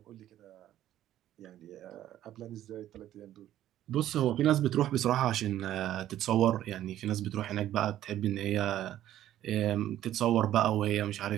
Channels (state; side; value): quieter; left; 12.6 dB